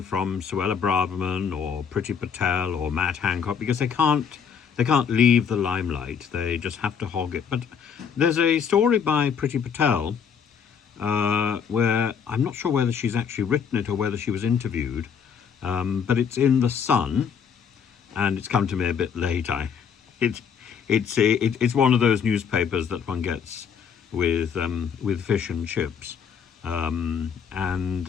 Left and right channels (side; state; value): right; quieter; 7.0 dB